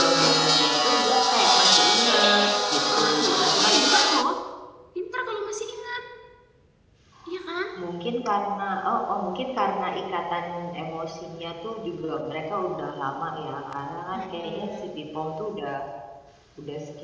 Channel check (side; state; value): both; identical; correlation 1.00